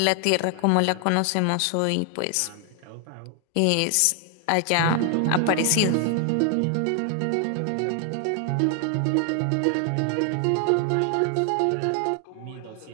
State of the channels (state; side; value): different; both; correlation 0.00